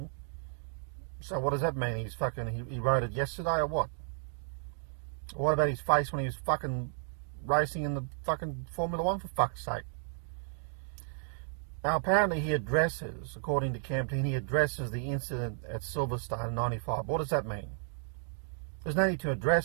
So what does that mean? He's fucking, he wrote it yesterday or what? What about his face when he was fucking racing in the fucking Formula 1, for fuck's sake? Now, apparently he addresses, according to Camp Team, he addresses the incident at Silverstone in 95. What does that mean? There's no need to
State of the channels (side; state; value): left; silent; digital silence